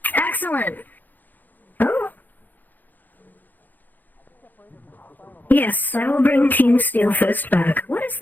Excellent. Oh. Yes, I will bring Team Steelfist back. What is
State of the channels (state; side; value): late; right; 0.085 ms